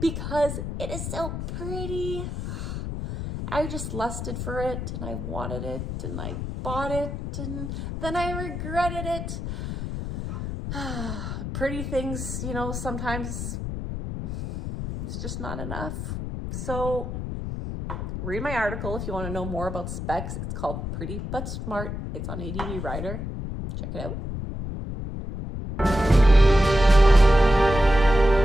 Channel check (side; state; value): left; noise; rumble, 5 dB below the sound